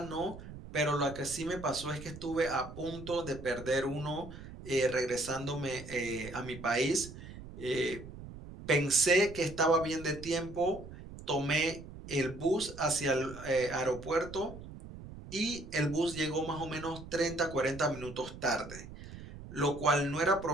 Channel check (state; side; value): noise; right; rumble, 13 dB below the sound